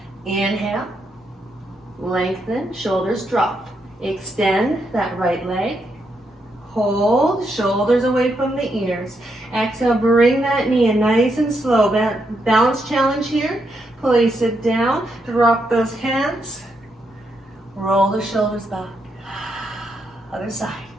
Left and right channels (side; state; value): both; normal; correlation 0.80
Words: Inhale, lengthen, shoulders drop. Extend that right leg. Hold, shoulders away from the ears. Exhale, bring that knee in nice and slow. Balance challenge here. Place it down, drop those hands. Roll the shoulders back. Other side.